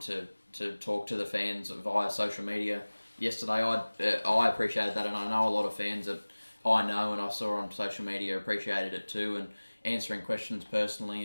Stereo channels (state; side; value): inverted; both; correlation -1.00